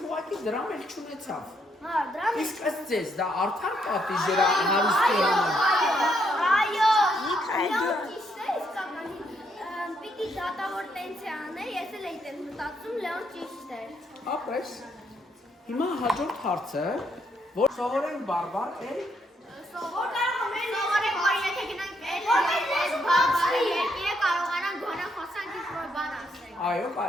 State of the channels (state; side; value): normal; both; correlation 0.75